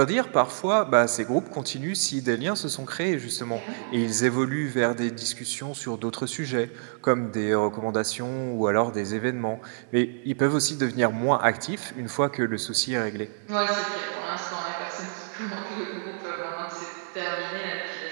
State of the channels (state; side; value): silent; left; digital silence